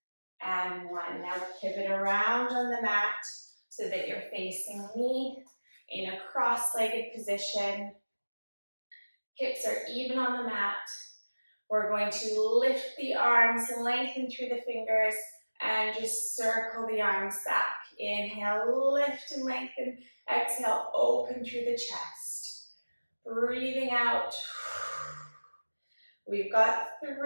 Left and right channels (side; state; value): both; inverted; correlation -1.00